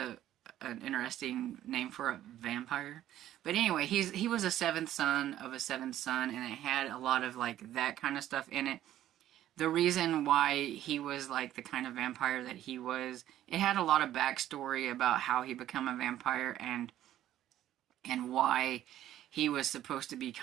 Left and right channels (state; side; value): quieter; left; 12.6 dB